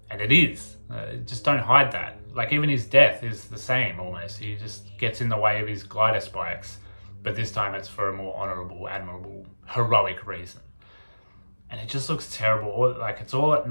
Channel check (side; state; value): both; inverted; correlation -1.00